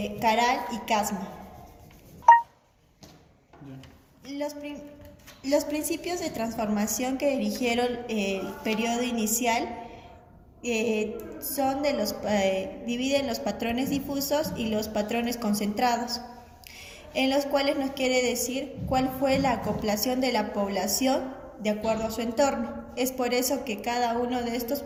Caral y Casma. Los principios de transformación que dirigieron el periodo inicial dividen los patrones difusos y los patrones concentrados, en los cuales nos quiere decir cuál fue la acoplación de la población de acuerdo a su entorno. Es por eso que cada uno de estos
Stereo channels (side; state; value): both; identical; correlation 1.00